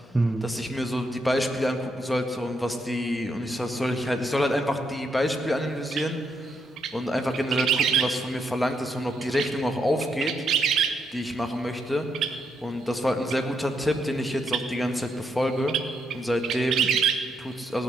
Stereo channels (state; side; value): normal; both; correlation 0.78